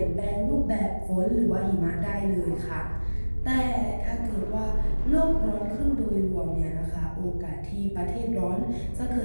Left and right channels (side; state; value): both; inverted; correlation -1.00